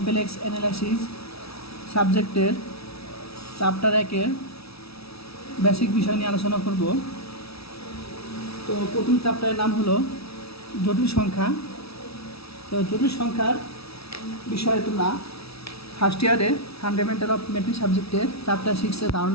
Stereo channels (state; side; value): late; right; 0.77 ms